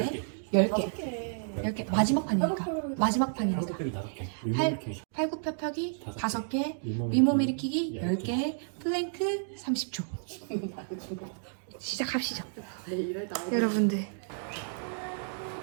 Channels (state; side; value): silent; left; digital silence